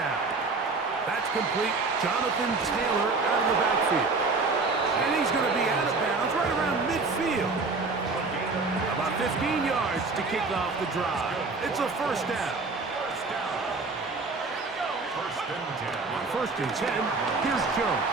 That's complete. Jonathan Taylor out of the backfield. And he's going to be out of bounds right around midfield. About 15 yards to kick off the drive. It's a first down. On first and 10, here's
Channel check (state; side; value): quieter; left; 3.9 dB